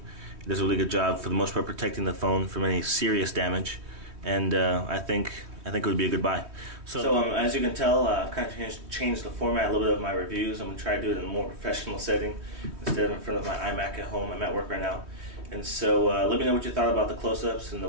It does a really good job for the most part protecting the phone from any serious damage, and I think it would be a good buy. So as you can tell, I've kind of changed the format a little bit of my reviews. I'm going to try to do it in a more professional setting instead of in front of my iMac at home. I'm at work right now. And so let me know what you thought about the close-ups and the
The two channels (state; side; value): late; left; 3.2 ms